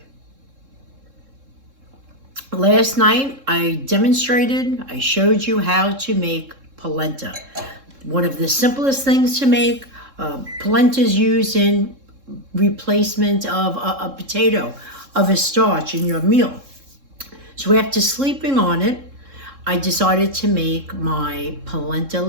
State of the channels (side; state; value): left; late; 3.7 ms